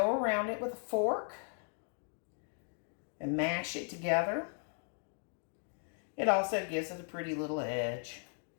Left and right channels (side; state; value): right; silent; 53 dB below the other